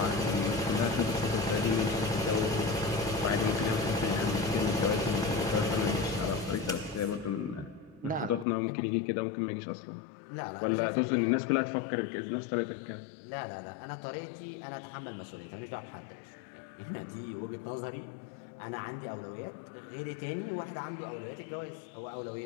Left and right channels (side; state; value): right; drops out; at 8.5 s